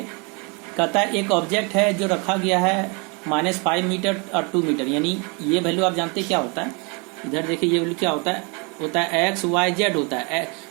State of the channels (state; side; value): quieter; left; 32.2 dB